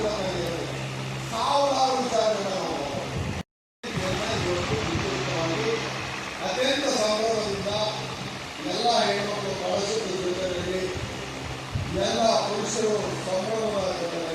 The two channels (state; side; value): identical; both; correlation 1.00